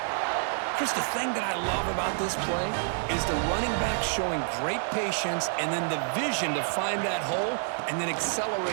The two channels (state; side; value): silent; left; digital silence